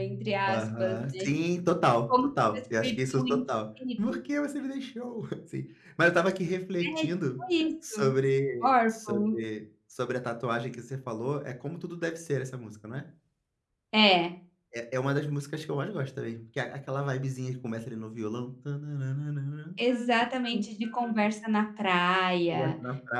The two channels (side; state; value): both; identical; correlation 1.00